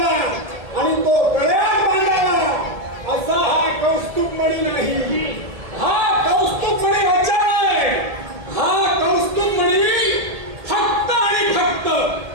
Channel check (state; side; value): late; left; 1.7 ms